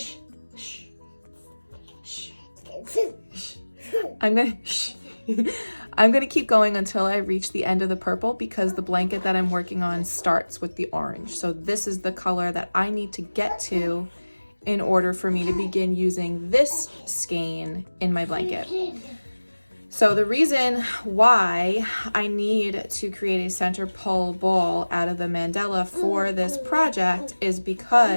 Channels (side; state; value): both; inverted; correlation -1.00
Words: gonna keep going until I reach the end of the purple, because the blanket that I'm working on starts with the orange. So this is the color that I need to get to in order for me to begin using this skein in my blanket. So the reason why I need to create a center pole ball out of the mandala for this project is